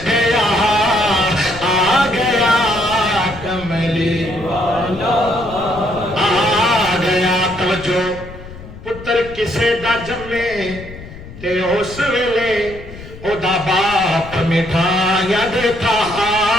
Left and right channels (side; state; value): left; noise; rumble, 15 dB below the sound